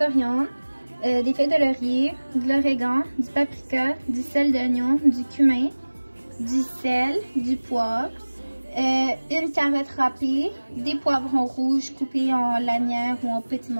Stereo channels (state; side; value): inverted; both; correlation -1.00